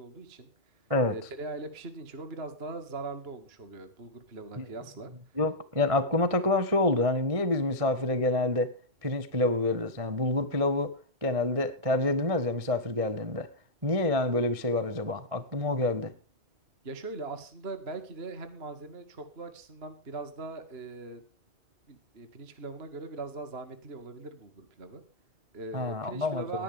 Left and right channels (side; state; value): left; late; 1.6 ms